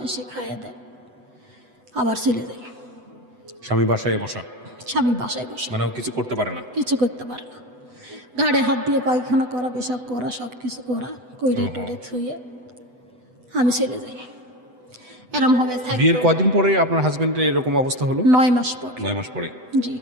এসে খাইয়ে দেয়, আবার চলে যাই। স্বামী বাসায় বসা? স্বামী বাসায় বসে, মানে ও কিছু করতে পারে না? কিছু করতে পারে না। ঘাড়ে হাত দিয়ে পায়খানা করা, পেশাব করা, সব কিছু করা, কইরে টরে থুয়ে আমি চলে যাই। এরম হবে বিয়ের কদিন পরে আপনার হাজবেন্ডের এরকম অবস্থা হলো? 9 মাস পর। 9 মাস পরে? জি।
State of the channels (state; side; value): late; left; 8.0 ms